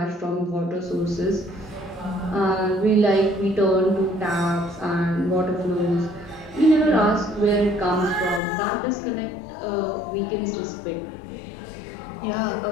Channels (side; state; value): right; drops out; at 8.4 s